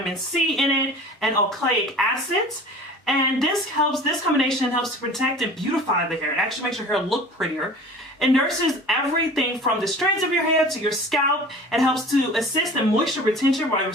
C in it and oleic acids. And this combination helps to protect and beautify the hair. It actually makes your hair look prettier. It nurses everything from the strands of your hair to your scalp and helps to assist in moisture retention while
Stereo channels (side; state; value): both; normal; correlation 0.42